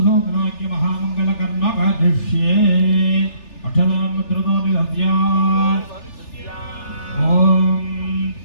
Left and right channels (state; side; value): late; right; 3.4 ms